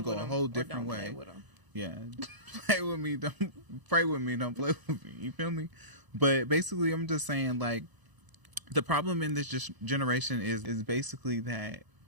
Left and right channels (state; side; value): late; left; 1.0 ms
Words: go a whole different way. Play with them. Yeah. Play with me. Don't pray with me. Don't play with me. You feel me? But basically, I'm just saying, like, the problem in this generation is basically that